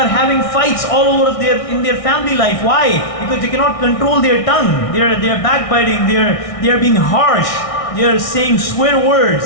having fights all over in their family life. Why? Because they cannot control their tongue. They are backbiting, they are being harsh, they are saying swear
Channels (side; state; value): right; late; 1.6 ms